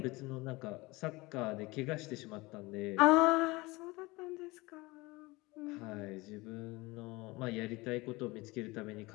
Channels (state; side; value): quieter; right; 22.7 dB